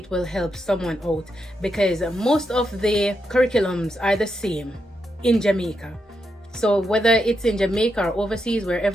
will help someone out, because most of the curriculums are the same in Jamaica. So whether it's in Jamaica or overseas,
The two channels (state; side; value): normal; both; correlation 0.83